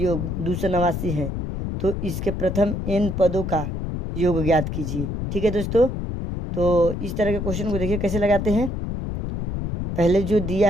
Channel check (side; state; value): left; noise; rumble, 4 dB below the sound